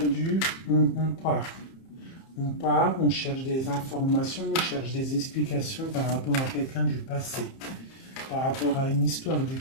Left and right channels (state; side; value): late; right; 30 ms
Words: on part. On part, on cherche des informations, on cherche des explications par rapport à quelqu'un du passé, par rapport à une histoire du